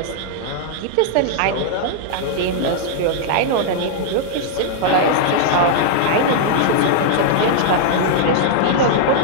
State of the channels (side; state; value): both; different; correlation -0.01